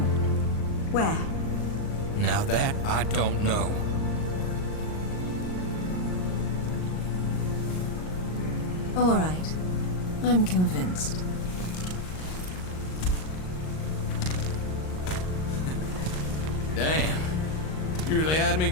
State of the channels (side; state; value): right; late; 38 ms